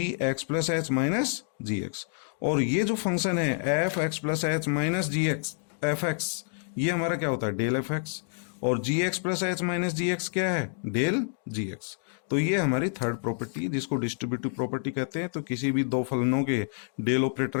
x plus h minus g x. और ये जो फंक्शन है f x plus h minus g x f x, ये हमारा क्या होता है, डेल एफ एक्स। और g x plus h minus g x क्या है, डेल जी एक्स। तो ये हमारी थर्ड प्रॉपर्टी जिसको डिस्ट्रीब्यूटिव प्रॉपर्टी कहते हैं। तो किसी भी दो फलनों के डेल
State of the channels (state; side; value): silent; right; digital silence